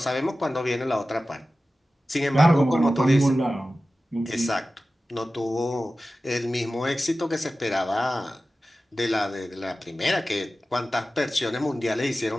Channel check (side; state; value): both; normal; correlation 0.95